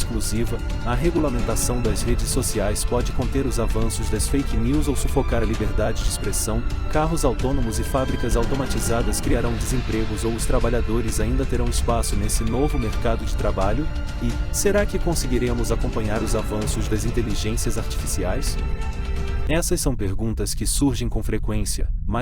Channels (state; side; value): identical; both; correlation 1.00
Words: A regulamentação das redes sociais pode conter os avanços das fake news ou sufocar a liberdade de expressão? Carros autônomos e fábricas automatizadas criarão desempregos ou os trabalhadores ainda terão espaço nesse novo mercado de trabalho? E, será que conseguiremos acompanhar os avanços das inteligências artificiais? Essas são perguntas que surgem com frequência,